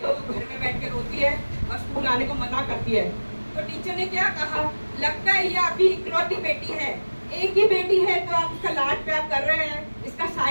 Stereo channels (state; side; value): inverted; both; correlation -1.00